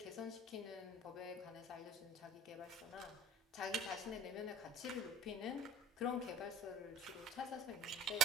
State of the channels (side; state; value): both; normal; correlation 0.43